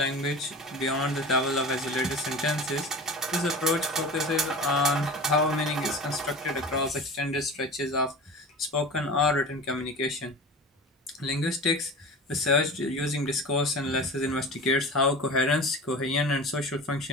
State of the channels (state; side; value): normal; both; correlation 0.34